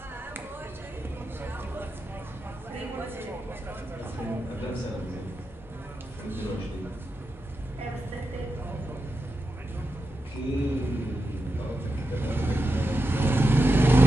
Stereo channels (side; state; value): both; normal; correlation 0.89